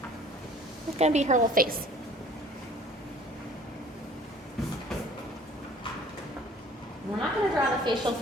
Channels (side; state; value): both; normal; correlation 0.51